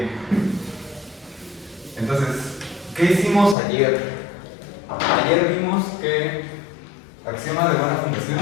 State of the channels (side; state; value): right; drops out; at 3.6 s